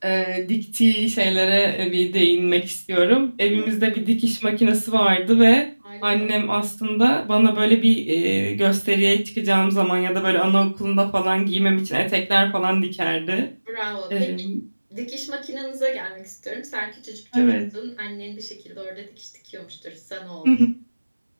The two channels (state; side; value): inverted; both; correlation -1.00